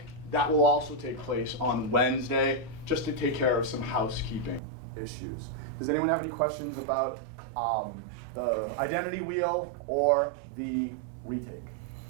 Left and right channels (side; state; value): left; drops out; at 4.6 s